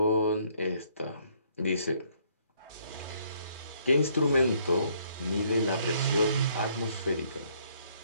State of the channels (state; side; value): inverted; both; correlation -0.66